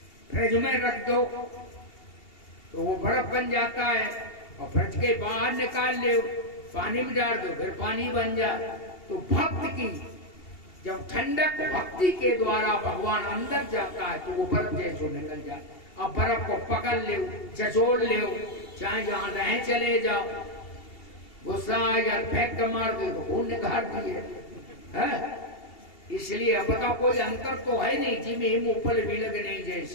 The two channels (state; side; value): late; right; 2.8 ms